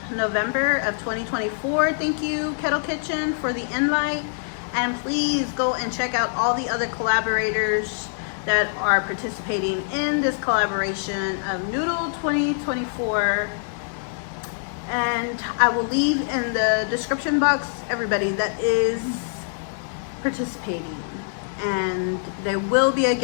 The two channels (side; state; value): right; silent; 58 dB below the other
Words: November of 2024. Thank you, Kettle Kitchen, for the invite, and please go and check out all the other collaborators that are participating in this collaboration of Noodle 2024. And I will leave in the description box everybody that is participating, and there will be a